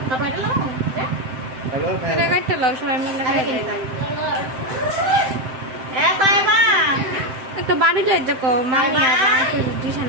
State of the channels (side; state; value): left; late; 7.7 ms